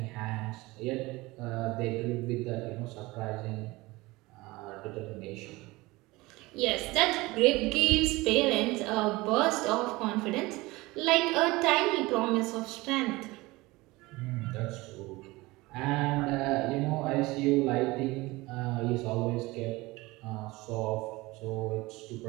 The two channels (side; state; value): left; quieter; 21.3 dB